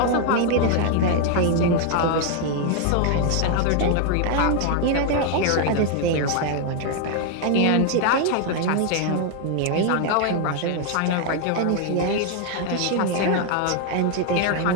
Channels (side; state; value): both; different; correlation 0.00